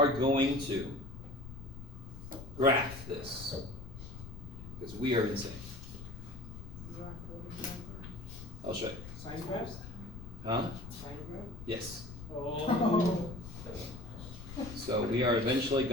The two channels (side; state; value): left; noise; rumble, 12 dB below the sound